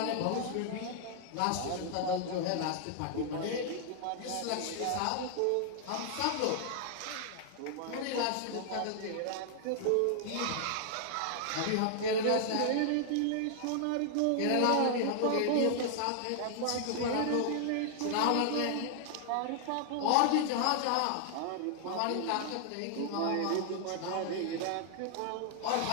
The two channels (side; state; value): both; different; correlation 0.00